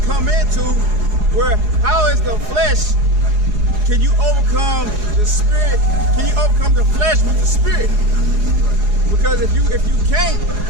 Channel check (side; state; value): left; late; 4.8 ms